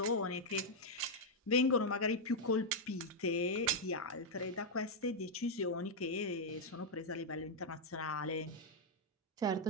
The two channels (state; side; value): normal; both; correlation -0.02